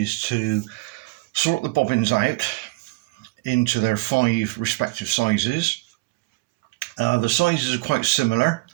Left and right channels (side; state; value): left; quieter; 23.7 dB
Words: to sort the bobbins out into their 5 respective sizes. The sizes are quite similar,